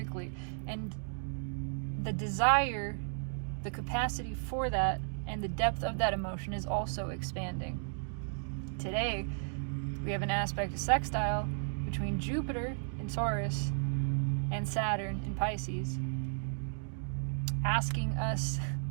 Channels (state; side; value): silent; left; digital silence